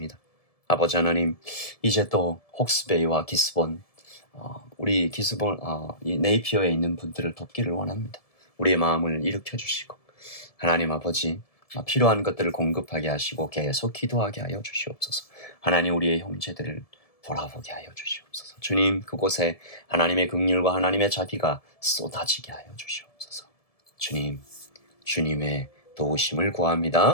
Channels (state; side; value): late; right; 1.7 ms